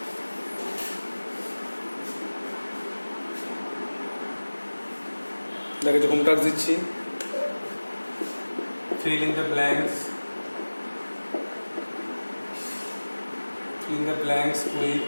দেখো যে হোম টাস্ক দিচ্ছি, fill in the blanks, fill in the blanks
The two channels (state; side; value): inverted; both; correlation -1.00